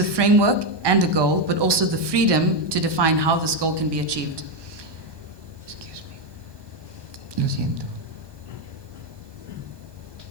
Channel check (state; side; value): late; left; 1.2 ms